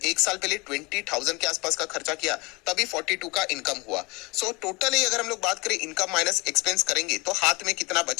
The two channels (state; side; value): quieter; right; 25.8 dB